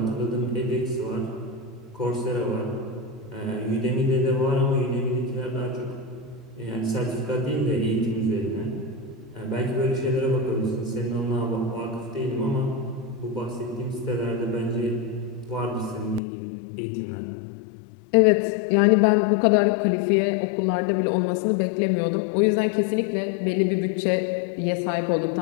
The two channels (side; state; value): right; drops out; at 16.2 s